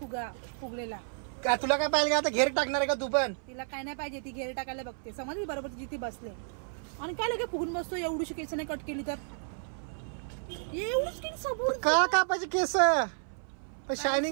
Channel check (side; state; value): left; silent; 57 dB below the other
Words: फुगलेला. का तुला काय पाहिजे आता घेर टाकणार आहे का तू पण. तिला काय नाही पाहिजे. ती घेर टाकायला बघते. समजली बरोबर तिची ती बसले. आणि काय लगे फुगून बसतो. एवढीशी केस नाही कट केली तर एवढीच केली सबूर का कापायचे केस.